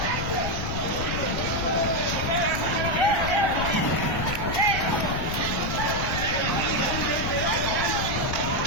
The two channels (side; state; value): left; noise; rumble, 5 dB below the sound